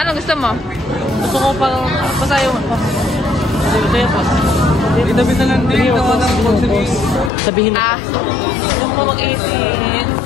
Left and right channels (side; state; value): right; drops out; at 7.3 s